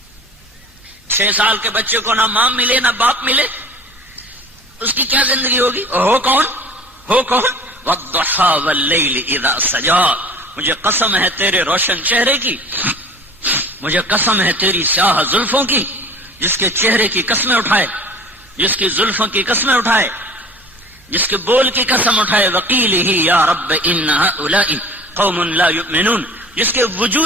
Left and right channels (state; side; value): normal; both; correlation 0.44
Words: چھ سال کے بچے کو نہ ماں ملے نہ باپ ملے، اس کی کیا زندگی ہوگی. ہو کون والضحى واللیل اذا سجا. مجھے قسم ہے تیرے روشن چہرے کی، مجھے قسم ہے تیری سیاہ زلفوں کی، جس کے چہرے کی قسمیں اٹھائے، جس کی زلفوں کی قسمیں اٹھائے، جس کے بول کی قسم اٹھائے. وقیلہ یا رب ان هؤلاء قوم لا یؤمنون، جس کے